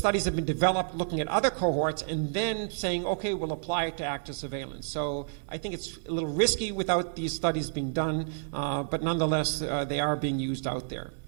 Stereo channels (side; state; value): left; silent; 58 dB below the other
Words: have been developed looking at other cohorts and then saying, okay, we'll apply it to active surveillance. So I think it's a little risky without these studies being done, but nonetheless, they are being used out there.